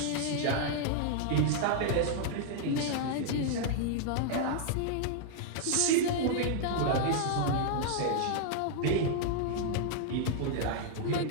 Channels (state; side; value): different; both; correlation -0.01